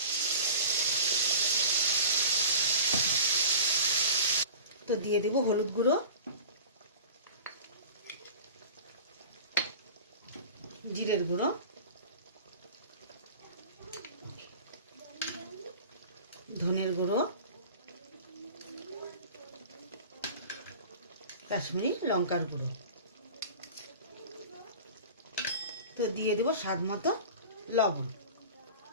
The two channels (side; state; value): both; inverted; correlation -0.38